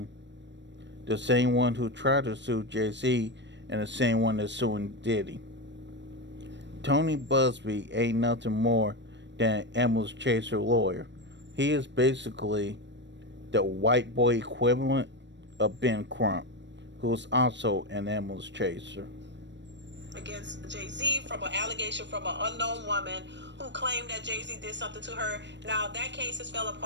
the same one who tried to sue Jay-Z, and the same one that's suing Diddy. Tony Busby ain't nothing more than Emma's Chaser lawyer. He is basically the white boy equivalent of Ben Crump, who's also an Emma's Chaser. Against Jay-Z from an allegation from an unknown woman who claimed that Jay-Z did something to her. Now, that case has fell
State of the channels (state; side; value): late; left; 0.52 ms